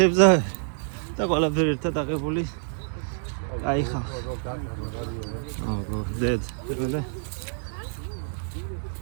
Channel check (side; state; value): left; silent; digital silence